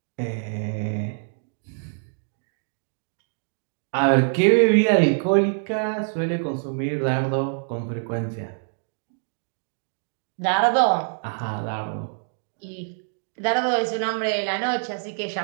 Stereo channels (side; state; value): left; silent; digital silence